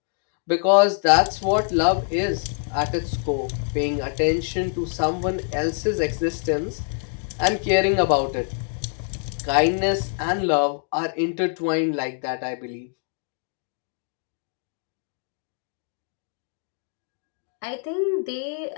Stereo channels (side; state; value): right; silent; 62 dB below the other